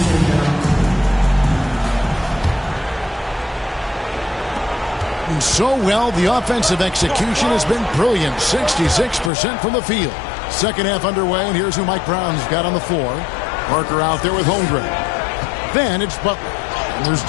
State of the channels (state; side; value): drops out; right; at 9.3 s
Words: And so well, the offensive execution has been brilliant. 66% from the field. Second half underway, and here's who Mike Brown's got on the floor. Parker out there with Holmgren. Then it's Butler. There's